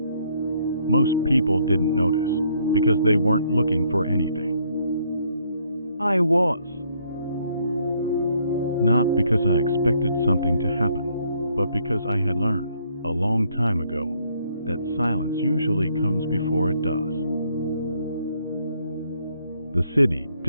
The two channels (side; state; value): both; inverted; correlation -0.69